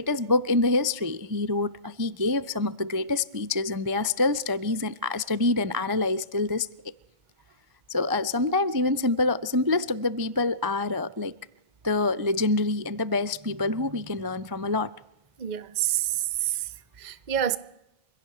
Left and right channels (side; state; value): left; late; 1.0 ms